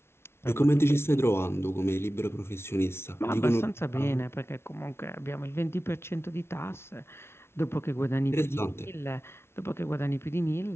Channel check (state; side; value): late; right; 0.12 ms